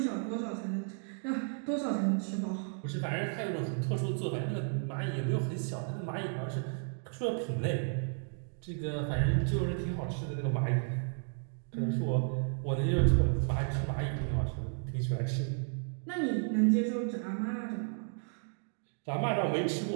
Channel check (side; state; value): left; silent; 56 dB below the other